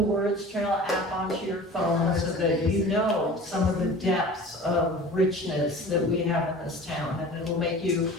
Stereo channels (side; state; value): both; normal; correlation 0.40